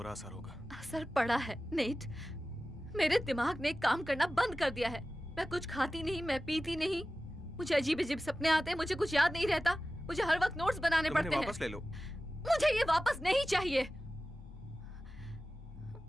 असर होगा। असर पड़ा है नेट। मेरे दिमाग ने काम करना बंद कर दिया है। मैं कुछ खाती नहीं, मैं पीती नहीं, मुझे अजीब अजीब सपने आते हैं, मुझे कुछ याद नहीं रहता, मुझे हर वक्त नोट्स बनाने पड़ते हैं। वापस ले लो। मुझे ये वापस नहीं चाहिए।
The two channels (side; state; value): both; normal; correlation 0.95